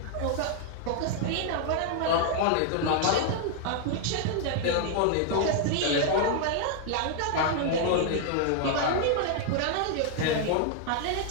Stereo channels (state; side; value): different; both; correlation 0.00